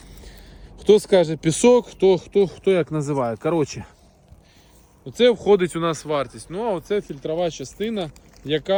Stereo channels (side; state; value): both; identical; correlation 1.00